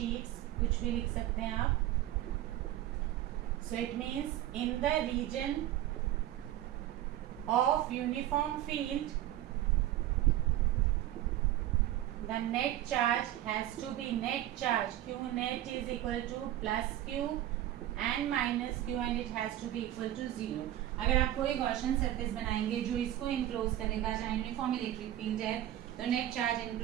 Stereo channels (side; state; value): left; quieter; 13.4 dB